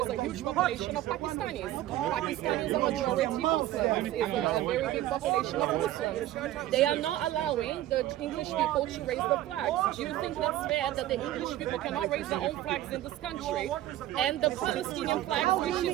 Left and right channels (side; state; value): left; quieter; 14.1 dB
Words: a huge population of Pakistanis. Pakistanis are majority Muslims. It's a very big population of Muslims. They are not allowing the English people to raise the flags. Do you think that's fair that the English people cannot raise their own flags in this country? And the Palestinian flag, which